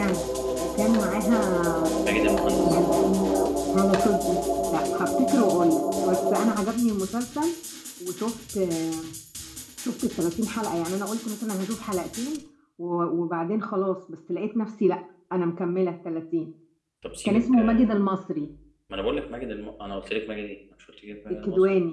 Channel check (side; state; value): both; identical; correlation 1.00